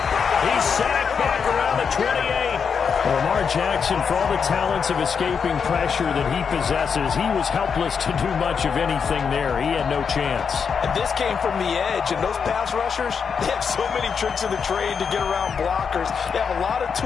He's sacked back around the 28. Lamar Jackson, for all the talents of escaping pressure that he possesses, he was helpless to do much of anything there. He had no chance. And this came from the edge, and those pass rushers, they have so many tricks in the trade to get around blockers. They have a lot of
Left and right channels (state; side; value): quieter; right; 6.3 dB